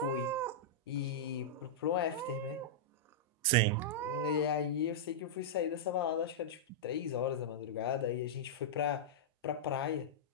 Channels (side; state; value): both; normal; correlation -0.09